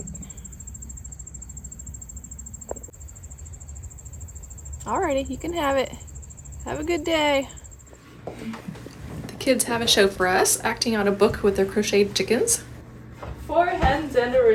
Alrighty, you can have it. Have a good day. The kids have a show for us, acting out a book with their crocheted chickens. 4 Hens and a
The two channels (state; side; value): identical; both; correlation 1.00